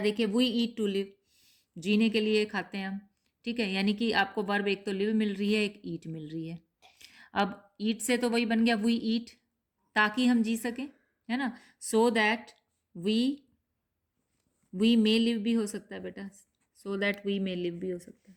वी ईट टू लिव, जीने के लिए खाते हैं हम, ठीक है। यानी कि आपको वर्ब एक तो लिव मिल रही है, एक ईट मिल रही है। अब ईट से तो वही बन गया वी ईट, ताकि हम जी सकें, है ना। So that we may live भी हो सकता है बेटा, so that we may live भी हो सकता है,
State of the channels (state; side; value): identical; both; correlation 1.00